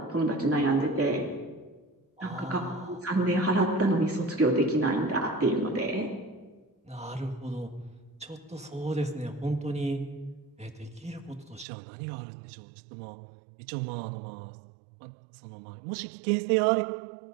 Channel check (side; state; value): left; drops out; at 11.7 s